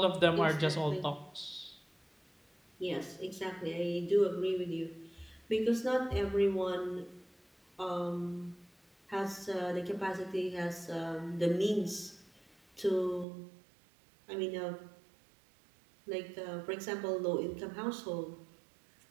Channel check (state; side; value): drops out; left; at 13.2 s